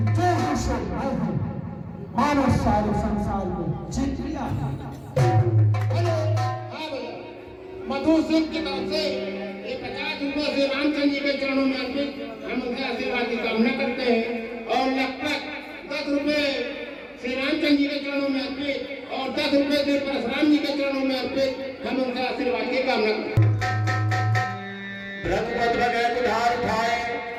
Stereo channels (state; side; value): identical; both; correlation 1.00